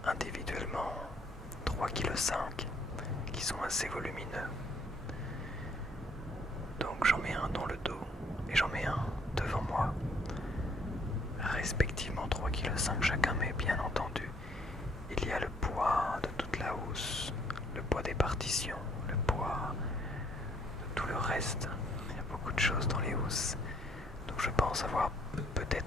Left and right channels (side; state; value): both; normal; correlation 0.65